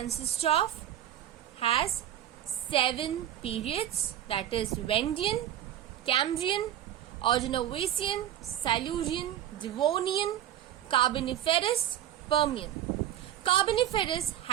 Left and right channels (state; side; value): quieter; left; 11.6 dB